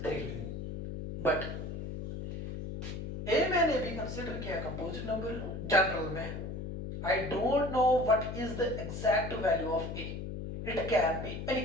3, बट ए मैंने भी कंसीडर किया कंपोजिट नंबर जनरल में, I don't know what is the exact value of A, it can be any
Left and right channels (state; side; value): noise; left; hum, 6 dB below the sound